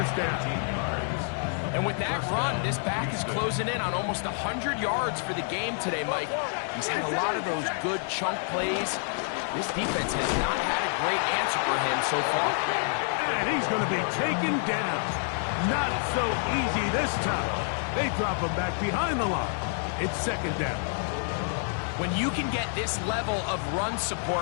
down. And with that run, this back is closing in on almost 100 yards for the game today, Mike. He's had a lot of those good chunk plays. This defense has not had a great answer for him so far. And he's going to be taken down. Not so easy this time. They drop him back behind the line. It's second down. When you can get this level of run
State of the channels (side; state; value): right; silent; 56 dB below the other